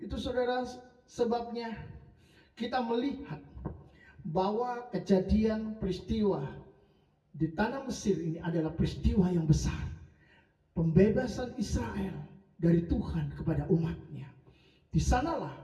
saudara sebabnya kita melihat bahwa kejadian peristiwa di tanah Mesir ini adalah peristiwa yang besar. Pembebasan Israel dari Tuhan kepada umatnya. Di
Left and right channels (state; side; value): identical; both; correlation 1.00